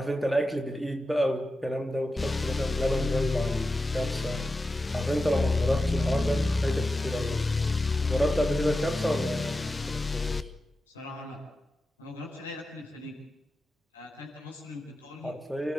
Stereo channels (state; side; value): normal; both; correlation 0.91